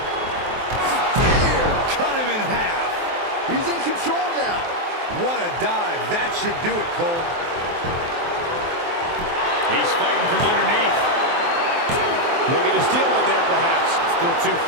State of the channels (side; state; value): left; late; 23 ms